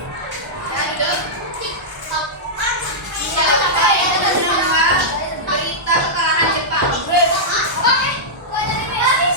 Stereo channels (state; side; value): normal; both; correlation -0.10